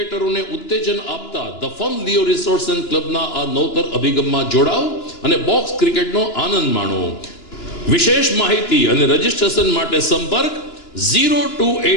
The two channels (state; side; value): late; right; 2.9 ms